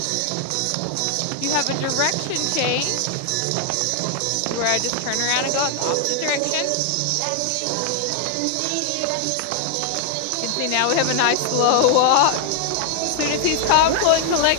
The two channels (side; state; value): both; different; correlation 0.00